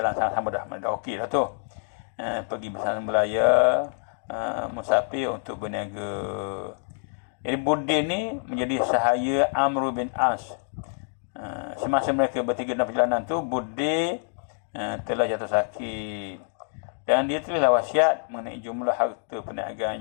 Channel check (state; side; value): silent; right; digital silence